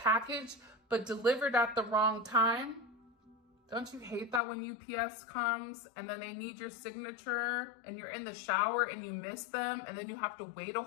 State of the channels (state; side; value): drops out; right; at 4.4 s